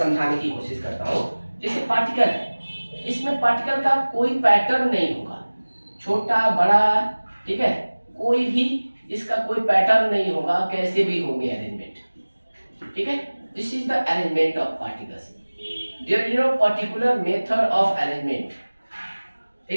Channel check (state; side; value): inverted; both; correlation -1.00